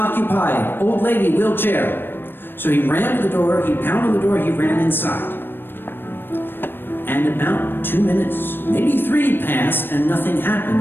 Old lady, wheelchair." So he ran to the door, he pounded the door, he ran inside. And about 2 minutes, maybe 3 passed, and nothing happened,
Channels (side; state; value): right; late; 0.098 ms